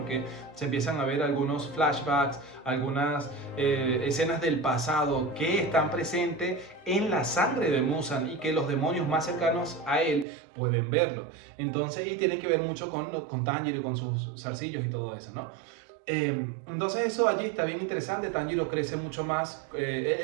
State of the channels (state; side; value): drops out; left; at 10.2 s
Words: se empiezan a ver algunos flashbacks, algunas escenas del pasado que están presentes en la sangre de Muzan y que los demonios más cercanos a él pueden verlo. Entonces, y tiene que ver mucho con Tanjiro y con sus zarcillos y todo eso, ¿no? Entonces eso allí está bien interesante. Tanjiro crece mucho más,